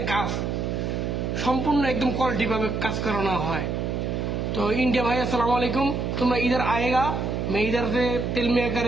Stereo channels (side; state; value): right; noise; hum, 1 dB below the sound